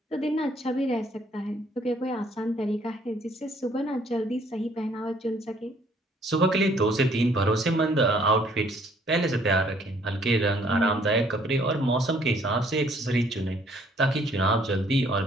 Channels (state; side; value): normal; both; correlation 0.62